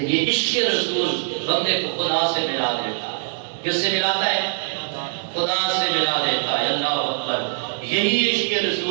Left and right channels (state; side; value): silent; left; 64 dB below the other